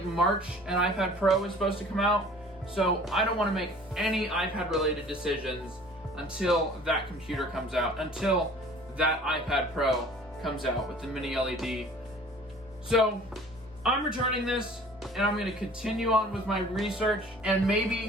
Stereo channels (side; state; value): both; normal; correlation 0.49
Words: March an iPad Pro is supposed to come out, so I don't want to make any iPad related decisions until that computer comes out, until that iPad Pro comes out with the mini LED. So I'm returning this and I'm going to continue on with my research. And